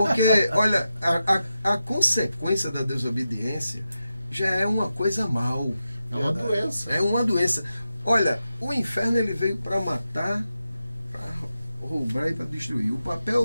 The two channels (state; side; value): inverted; both; correlation -0.90